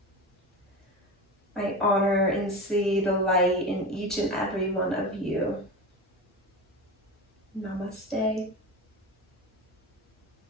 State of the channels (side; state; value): both; normal; correlation 0.26